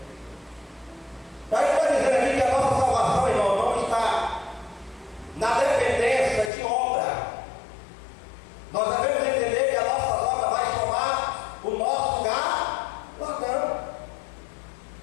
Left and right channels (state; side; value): drops out; right; at 6.5 s